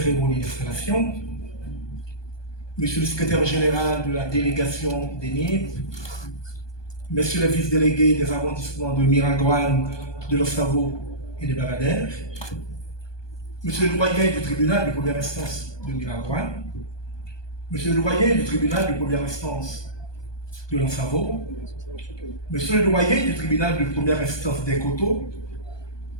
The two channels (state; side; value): late; right; 1.2 ms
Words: d'installation, Monsieur le secrétaire général de la délégation des NIB, Messieurs les vice-délégués des arrondissements de Miragoâne, de Lossavo et de Baradère, Monsieur le doyen du tribunal de première instance de Miragoâne, Monsieur le doyen du tribunal de première instance de Lossavo, Monsieur le doyen du tribunal de première instance des Coteaux,